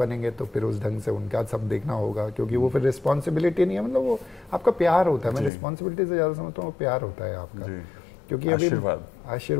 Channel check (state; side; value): drops out; right; at 5.5 s